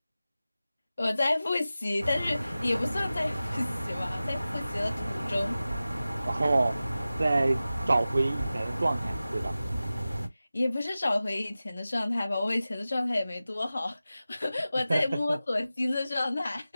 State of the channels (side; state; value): both; inverted; correlation -0.95